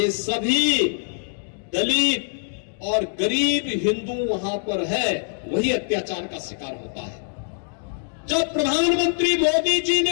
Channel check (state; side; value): silent; right; 60 dB below the other